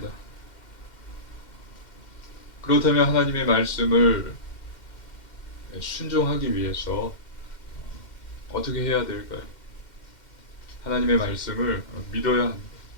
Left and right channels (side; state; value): right; late; 2.1 ms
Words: 그렇다면 하나님의 말씀을 순종하기 위해서 어떻게 해야 될까요? 하나님의 말씀을 믿어야 합니다.